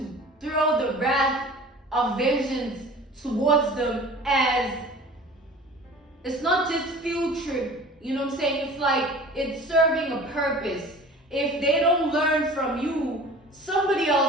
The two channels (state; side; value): normal; both; correlation 0.42